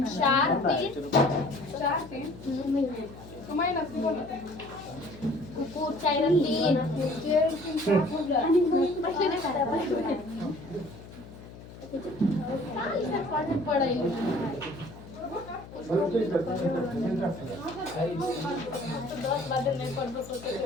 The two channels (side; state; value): left; noise; hum, 16 dB below the sound